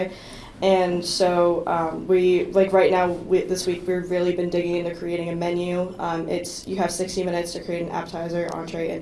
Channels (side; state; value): both; identical; correlation 1.00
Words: And so we like right now this week we've really been digging into creating a menu. You have 60 minutes to create an appetizer, entree, and